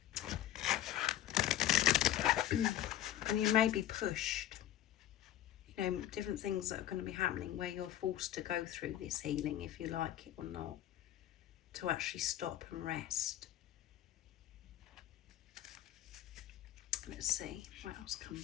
And you may be pushed. You know, different things that are going to be happening where you're forced to go through this healing, if you like it or not, to actually stop and rest. Let's see what else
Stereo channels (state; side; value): quieter; right; 12.7 dB